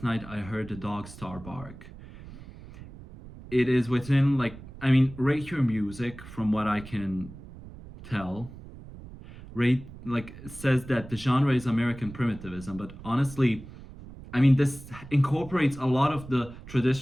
Night I Heard the Dog Star Bark. It is within, like, I mean, rate your music from what I can tell. Rate, like, says that the genre is American primitivism, but honestly, I mean, this incorporates a lot of the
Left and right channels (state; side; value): noise; right; rumble, 16 dB below the sound